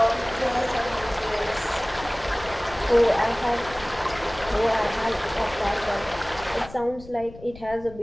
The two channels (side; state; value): left; noise; rumble, 17 dB below the sound